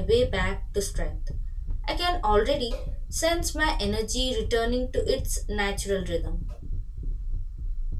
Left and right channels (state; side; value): identical; both; correlation 1.00